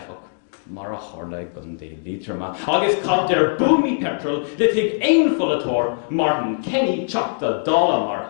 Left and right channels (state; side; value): silent; right; digital silence